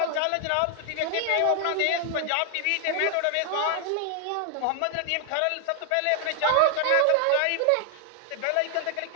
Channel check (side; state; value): both; different; correlation 0.00